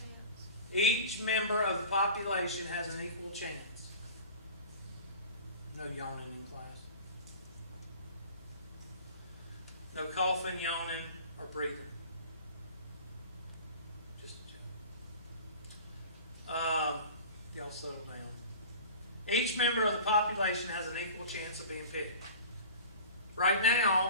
Each member of the population has an equal chance. No yawning in class. No coughing, yawning, or breathing. Just a joke. Y'all settle down. Each member of the population has an equal chance of being picked. Right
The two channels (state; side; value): inverted; both; correlation -0.38